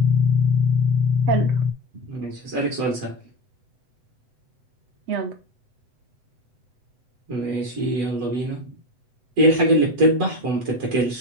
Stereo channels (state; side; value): late; left; 7.9 ms